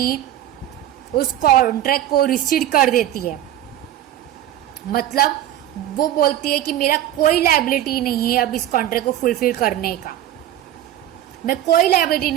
उस कॉन्ट्रैक्ट को रिसीड कर देती है। मतलब वो बोलती है कि मेरा कोई लायबिलिटी नहीं है अब इस कॉन्ट्रैक्ट को फुलफिल करने का, मैं कोई लायबिलिटी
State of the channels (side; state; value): left; quieter; 12.4 dB